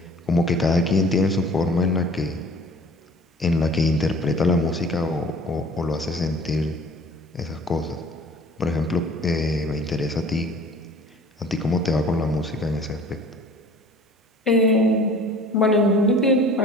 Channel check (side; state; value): both; normal; correlation 0.48